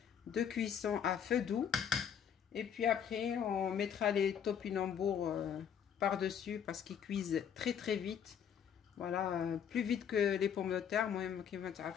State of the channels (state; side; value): quieter; right; 8.2 dB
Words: de cuisson à feu doux et puis après on mettra les topinambours par-dessus parce qu'ils cuisent très vite. Voilà, plus vite que les pommes de terre. المهم كيما